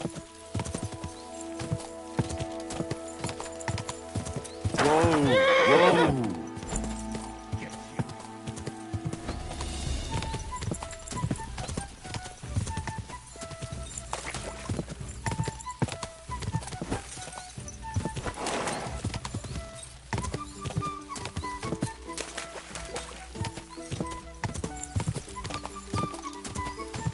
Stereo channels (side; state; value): both; identical; correlation 1.00